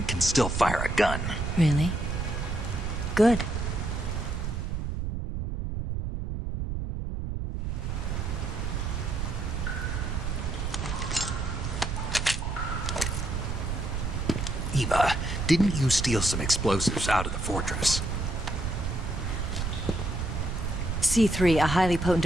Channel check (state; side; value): noise; right; rumble, 2 dB below the sound